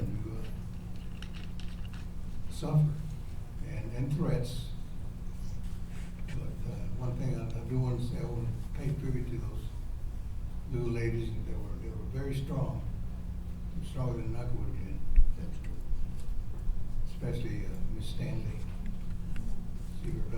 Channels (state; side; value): identical; both; correlation 1.00